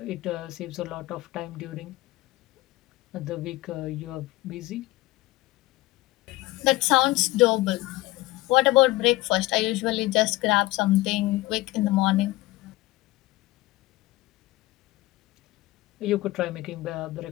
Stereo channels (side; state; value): right; quieter; 19.1 dB